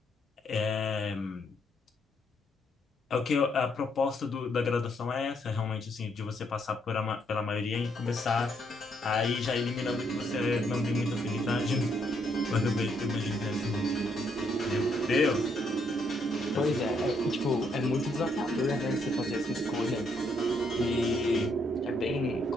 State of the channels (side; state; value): both; normal; correlation 0.73